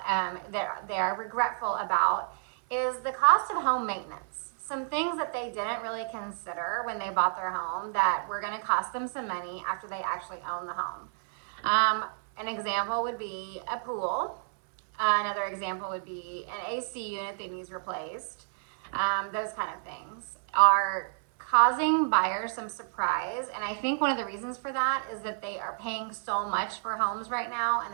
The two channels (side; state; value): left; silent; 58 dB below the other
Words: that they're regretful about is the cost of home maintenance. Some things that they didn't really consider when they bought their home that were going to cost them some money after they actually own the home. An example would be a pool. Another example would be an AC unit that needs replaced. Those kind of things are causing buyers some surprise. And I think one of the reasons for that is that they are paying so much for homes right now and